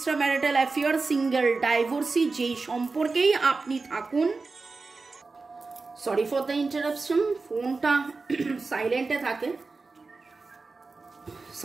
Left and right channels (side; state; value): left; quieter; 4.0 dB